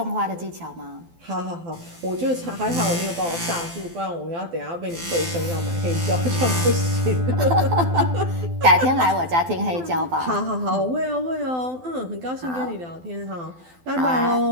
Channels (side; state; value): left; late; 12 ms